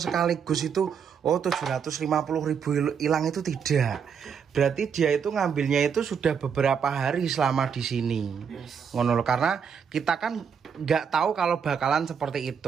sekaligus itu 750.000 hilang itu tidak. Berarti dia itu ngambilnya itu sudah beberapa hari selama di sini. Ngono loh, karena kita kan nggak tahu kalau bakalan seperti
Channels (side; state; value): left; quieter; 7.0 dB